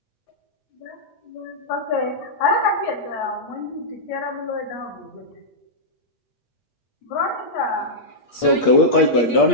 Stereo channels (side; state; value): right; late; 8.1 ms